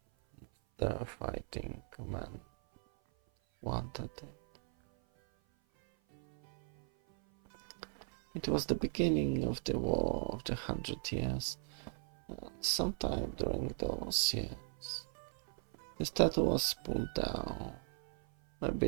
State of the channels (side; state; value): left; silent; 52 dB below the other